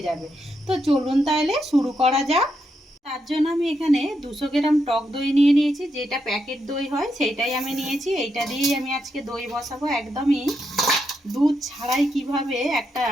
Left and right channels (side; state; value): both; normal; correlation 0.82